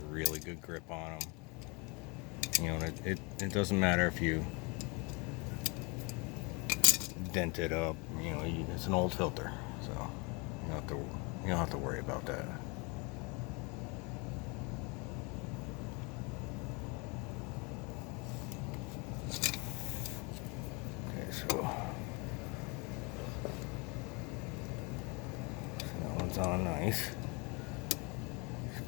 really good grip on them. You know, it doesn't matter if you dent it up. You know, it's an old filter, so you don't have to worry about that. So that one's on nice.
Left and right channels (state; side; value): quieter; right; 29.6 dB